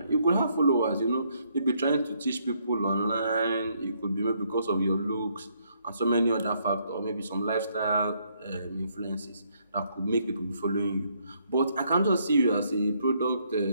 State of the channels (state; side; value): inverted; both; correlation -0.71